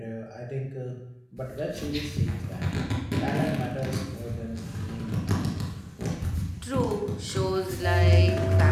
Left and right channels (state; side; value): identical; both; correlation 1.00